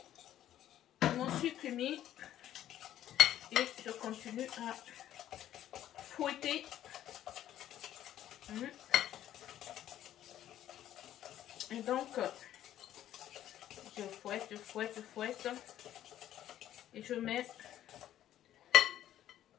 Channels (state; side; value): quieter; right; 12.0 dB